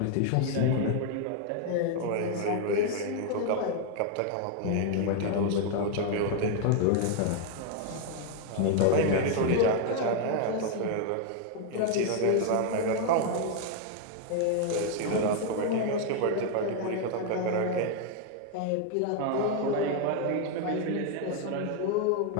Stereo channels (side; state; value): both; different; correlation 0.00